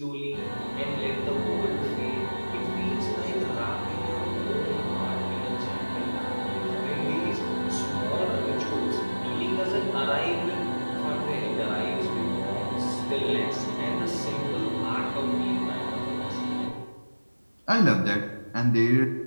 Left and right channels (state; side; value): inverted; both; correlation -1.00